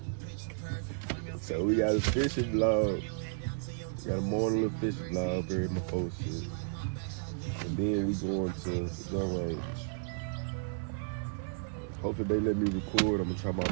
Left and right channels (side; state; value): left; silent; 56 dB below the other